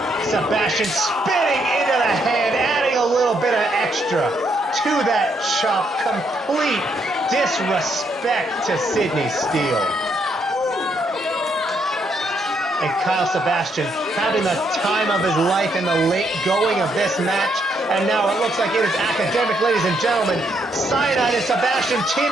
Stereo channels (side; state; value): both; normal; correlation 0.75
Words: Sebastian spinning into the hand, adding a little bit of extra to that chop. Complete disrespect to Sydney Steele. And Kyle Sebastian having the time of his life in the late going of this match. And now it looks like it is academic, ladies and gentlemen. Cyanide and Sebastian